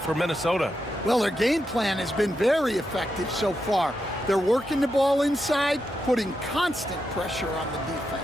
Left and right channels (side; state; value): both; normal; correlation 0.85